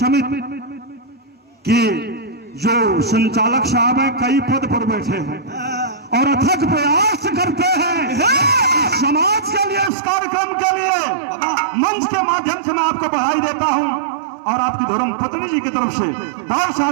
के जो संचालक साहब हैं कई पद पर बैठे हैं और अथक प्रयास करते हैं समाज के लिए, इस कार्यक्रम के लिए। मंच के माध्यम से मैं आपको बधाई देता हूं और आपकी धर्म पत्नी जी की तरफ से बहुत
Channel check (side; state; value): left; drops out; at 9.9 s